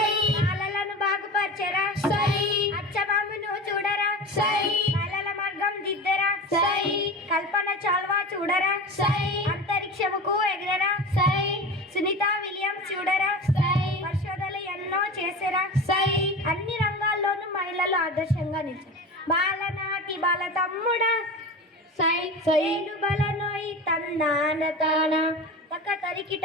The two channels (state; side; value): normal; both; correlation 0.31